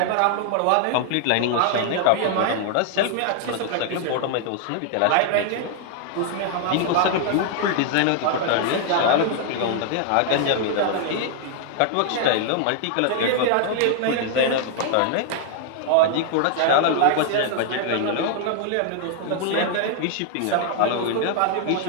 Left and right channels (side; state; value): both; different; correlation 0.00